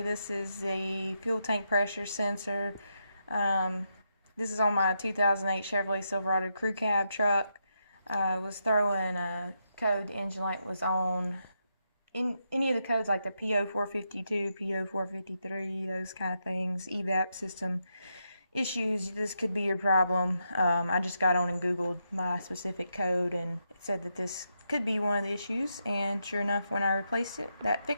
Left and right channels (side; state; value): both; inverted; correlation -0.83